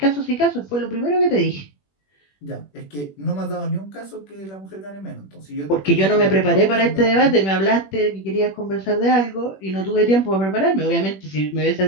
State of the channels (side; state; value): right; late; 21 ms